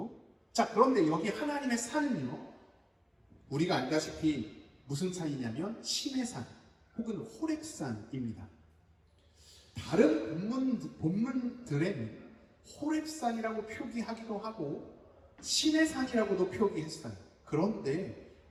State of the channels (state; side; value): identical; both; correlation 1.00